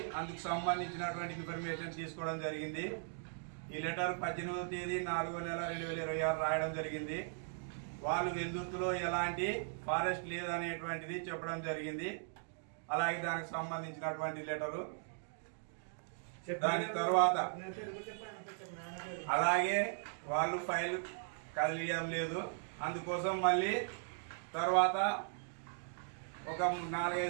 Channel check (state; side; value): silent; left; digital silence